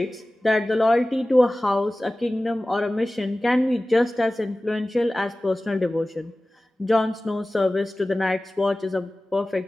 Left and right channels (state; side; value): normal; both; correlation 0.97